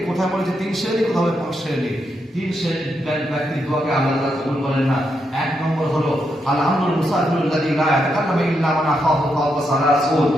কোথায় বলেছে 3 শ্রেণী, কোথাও 5 শ্রেণী, 3 শ্রেণীর ব্যক্তির দোয়াকে আল্লাহ তাআলা কবুল করেন না। 1 নম্বর হলো আল-আমরুল মুসাফিরুল্লাযী লা ইয়াতাকাল্লামু ইল্লা মান আখাহু ফাওকা সালাসুন,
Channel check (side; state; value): both; normal; correlation 0.82